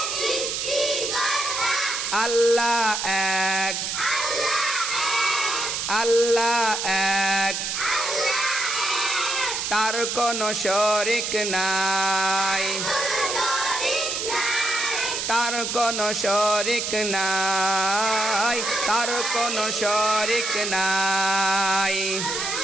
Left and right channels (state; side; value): noise; right; hiss, 2 dB below the sound